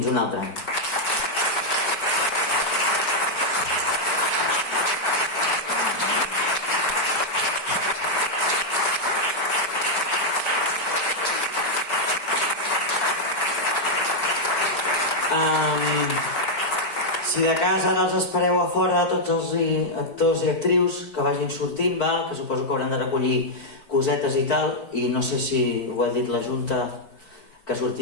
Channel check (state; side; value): late; right; 4.6 ms